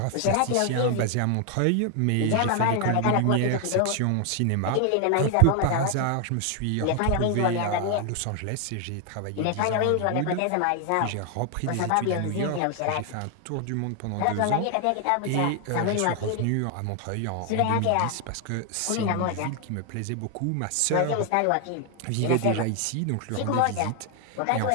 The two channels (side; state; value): both; different; correlation 0.00